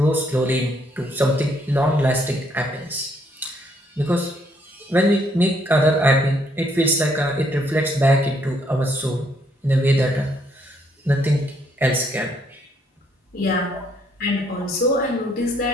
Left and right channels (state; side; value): normal; both; correlation 0.70